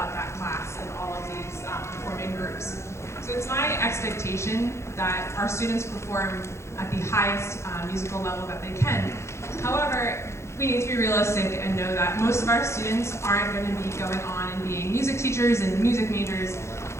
that class and all of these performing groups. So it's my expectation that our students perform at the highest musical level that they can. However, we need to be realistic and know that most of our students aren't going to be going on and being music teachers and music majors.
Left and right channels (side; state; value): right; late; 0.13 ms